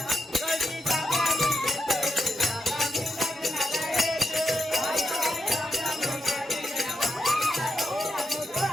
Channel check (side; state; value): both; normal; correlation 0.84